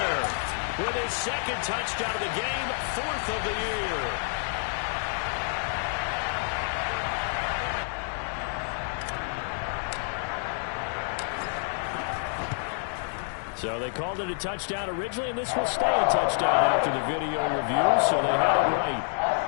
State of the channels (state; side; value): silent; right; 59 dB below the other